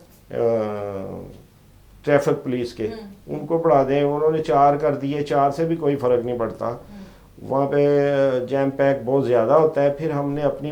ट्रैफिक पुलिस के, उनको बढ़ा दें। उन्होंने 4 कर दिए, 4 से भी कोई फ़र्क नहीं पड़ता, वहाँ पे जैम पैक बहुत ज़्यादा होता है। फिर हमने अपनी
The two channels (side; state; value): both; identical; correlation 1.00